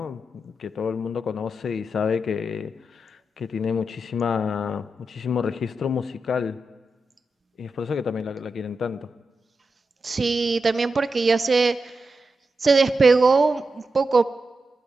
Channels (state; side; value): normal; both; correlation 0.88